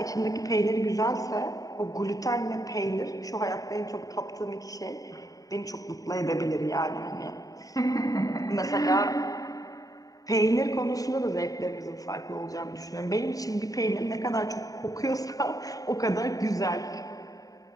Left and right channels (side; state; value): right; late; 0.18 ms